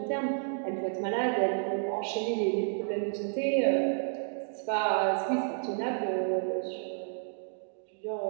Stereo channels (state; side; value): silent; left; digital silence